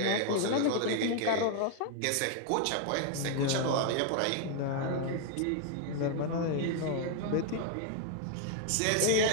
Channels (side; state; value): both; different; correlation 0.00